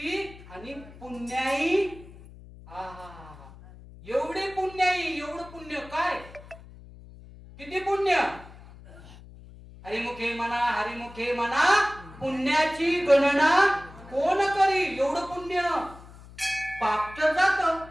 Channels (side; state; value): left; noise; hum, 19 dB below the sound